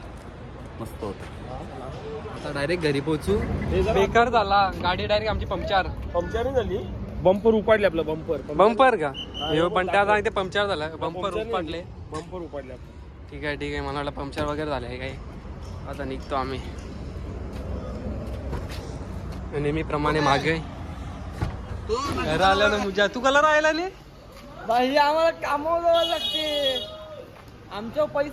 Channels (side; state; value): both; identical; correlation 1.00